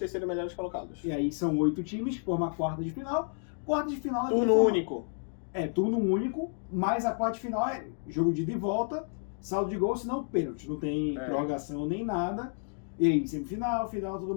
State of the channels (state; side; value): silent; right; 57 dB below the other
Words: melhores colocados. E aí são 8 times, forma a quarta de final. Quarta de final... Turno único. Turno único, mas a quarta de final é jogo de ida e volta, saldo de gol, senão pênalti. Não tem prorrogação nem nada. E aí, semifinal, final, tudo